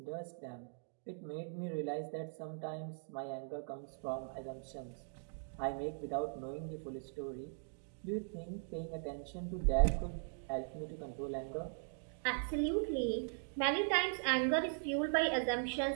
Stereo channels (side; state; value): left; silent; digital silence